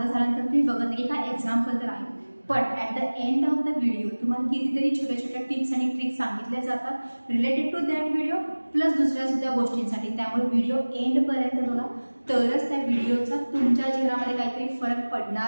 झाल्यानंतर तुम्ही बघत नाही की काय एक्झाम्पल तर आहे, पण at the end of the video तुम्हाला कितीतरी छोट्या छोट्या टिप्स आणि ट्रिक्स सांगितल्या जातात related to that video, plus दुसऱ्या सुद्धा गोष्टींसाठी. त्यामुळे व्हिडिओ एंडपर्यंत बघा, तरच त्या व्हिडिओचा तुमच्या जीवनामध्ये काहीतरी फरक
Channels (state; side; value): inverted; both; correlation -1.00